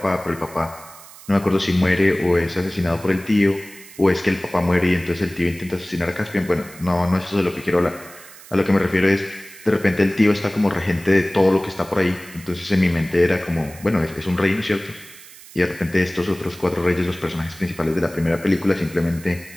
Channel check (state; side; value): noise; right; hiss, 19 dB below the sound